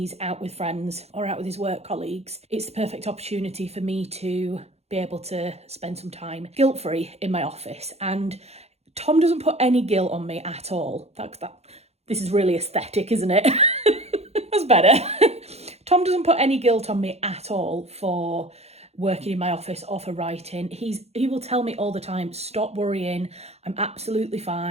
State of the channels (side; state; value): left; late; 0.31 ms